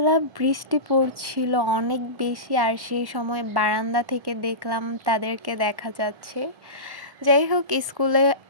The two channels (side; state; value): left; late; 1.1 ms